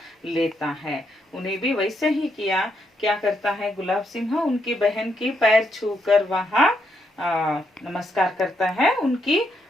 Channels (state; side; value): normal; both; correlation 0.78